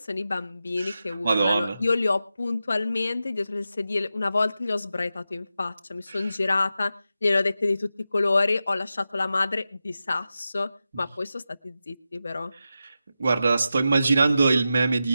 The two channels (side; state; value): both; inverted; correlation -0.90